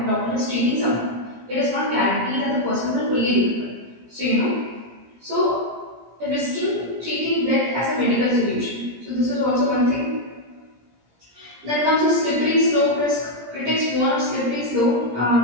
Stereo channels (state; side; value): late; left; 17 ms